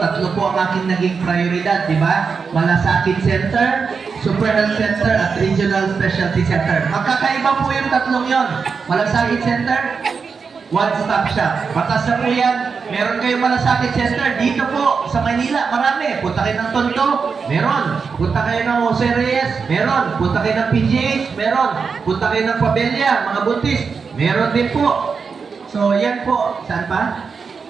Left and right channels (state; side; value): quieter; left; 5.4 dB